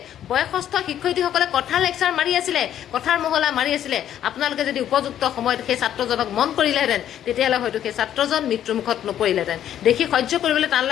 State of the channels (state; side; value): quieter; right; 10.8 dB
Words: বয়সস্থ শিক্ষয়িত্ৰীসকলে কথাৰ লেকচাৰ মাৰি আছিলে, কথাৰ মহলা মাৰি আছিলে, আপোনালোকে যদি উপযুক্ত সময়ত সেই ছাত্ৰজনক মন কৰিলেহেঁতেন, তেতিয়াহ'লে হয়তো সেই ছাত্ৰজন মৃত্যুমুখত নপৰিলেহেঁতেন। দেখি সহ্য কৰিবলৈ টান